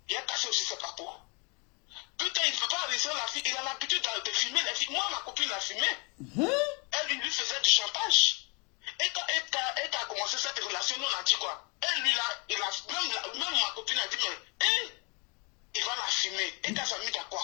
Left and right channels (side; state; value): right; quieter; 32.3 dB